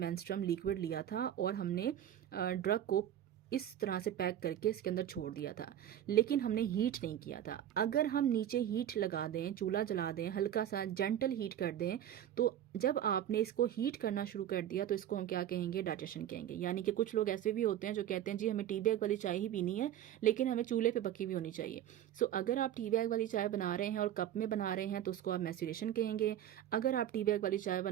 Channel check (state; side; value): quieter; left; 11.1 dB